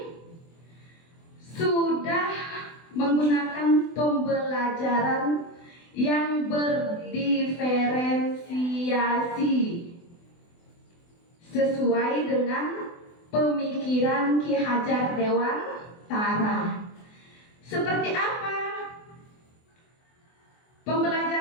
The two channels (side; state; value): right; late; 24 ms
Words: sudah menggunakan pembelajaran yang berdiferensiasi sesuai dengan pemikiran Ki Hajar Dewantara. Seperti apa